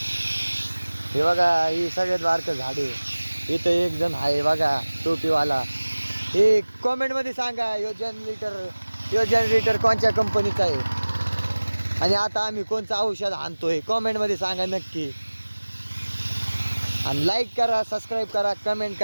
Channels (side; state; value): both; inverted; correlation -1.00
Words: हे बघा ही सगळ्यात बारकं झाड आहे. इथं एक जण आहे बघा टोपीवाला. हे कॉमेंटमध्ये सांगा यो जनरेटर कोणत्या कंपनीचा आहे आणि आता आम्ही कोणतं औषध आणतोय. कॉमेंटमध्ये सांगा नक्की. आणि लाईक करा, सबस्क्राईब करा, कमेंट